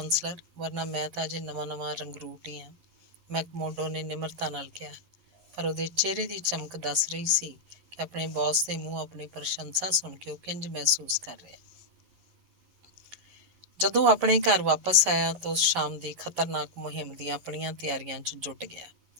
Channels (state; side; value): late; left; 11 ms